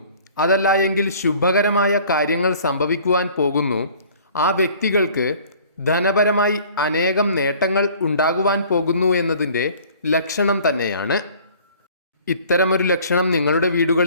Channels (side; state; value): both; inverted; correlation -0.51